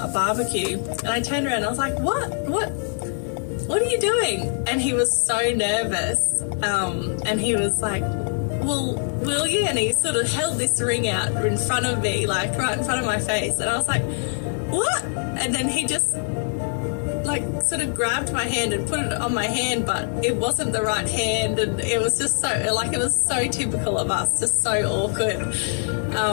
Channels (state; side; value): silent; right; 63 dB below the other